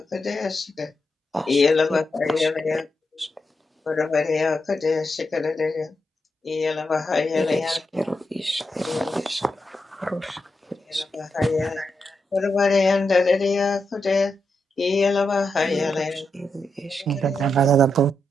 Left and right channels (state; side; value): normal; both; correlation 0.85